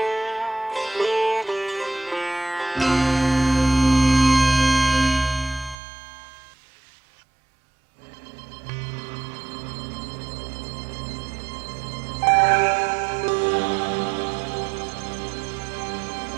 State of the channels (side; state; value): left; drops out; at 5.8 s